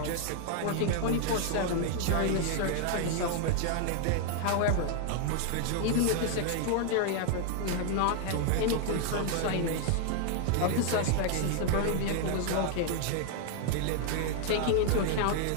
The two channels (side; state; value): both; different; correlation 0.00